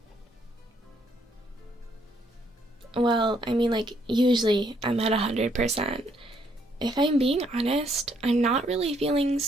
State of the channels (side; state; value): both; normal; correlation 0.70